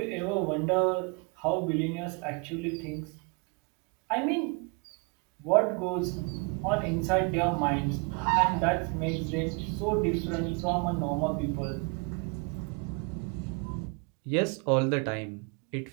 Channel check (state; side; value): quieter; left; 31.7 dB